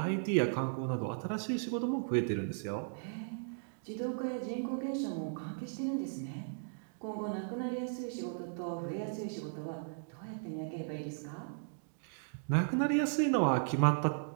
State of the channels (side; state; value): left; silent; digital silence